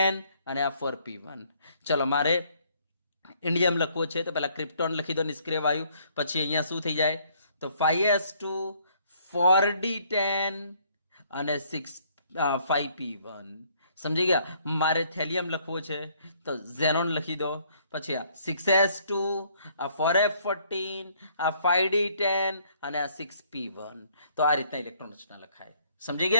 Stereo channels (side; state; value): both; inverted; correlation -0.64